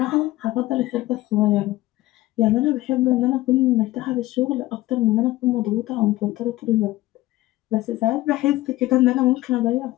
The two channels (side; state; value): right; quieter; 17.4 dB